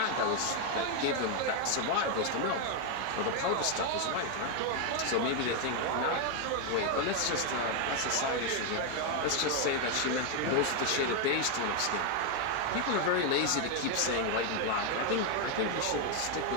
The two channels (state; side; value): different; both; correlation 0.01